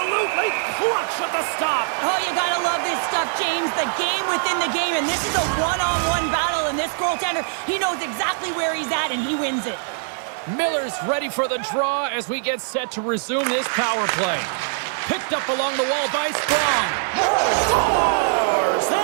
clutch at the stop. Oh, you gotta love this stuff, James. The game within the game, and this is a one-on-one battle, and this goaltender, he knows exactly where he's at, and he wins it. Miller's ready for the draw as we get set to resume this power play. Picked up along the wall by Sprong. Scores!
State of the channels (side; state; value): left; silent; digital silence